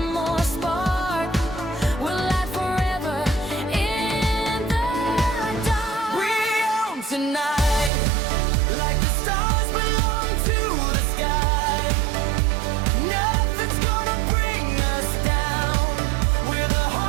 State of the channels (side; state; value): left; drops out; at 7.9 s